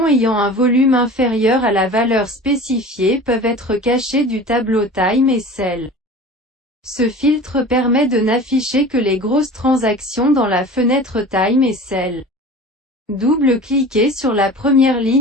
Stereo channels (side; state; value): both; normal; correlation 0.38